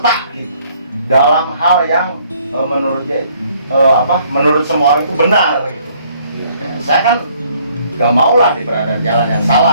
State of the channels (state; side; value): inverted; both; correlation -0.63